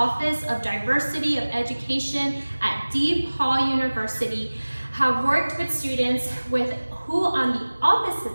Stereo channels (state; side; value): inverted; both; correlation -1.00